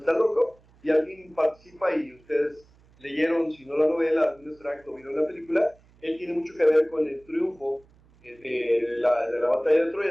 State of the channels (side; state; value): right; noise; hum, 29 dB below the sound